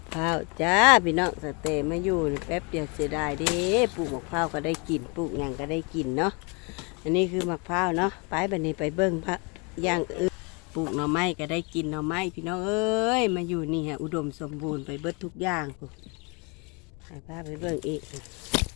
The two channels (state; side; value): quieter; right; 31.6 dB